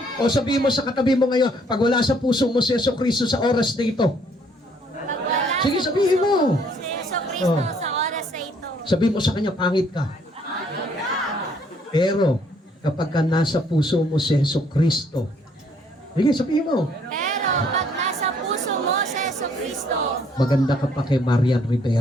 O sabihin mo sa katabi mo ngayon, pag wala sa puso mo si Yesu Kristo sa oras na ito. Sige, sabihin mo. Si Yesu Cristo sa oras na ito. Sabi mo sa kanya, pangit ka. Pero, kapag ka nasa puso mo si Hesus Kristo, sige, sabihin mo, Pero pag nasa puso mo si Jesucristo, maganda ka pa kay Marian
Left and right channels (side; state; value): both; normal; correlation 0.65